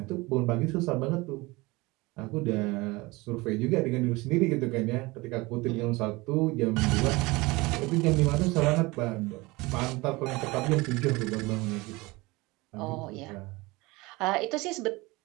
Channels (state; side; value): quieter; left; 22.9 dB